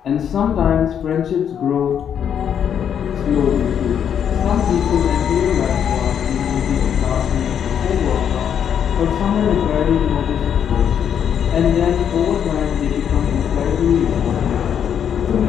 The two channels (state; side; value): quieter; right; 8.5 dB